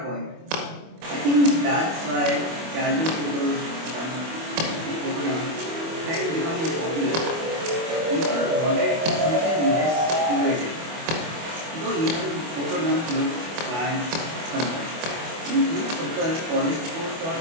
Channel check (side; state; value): left; late; 24 ms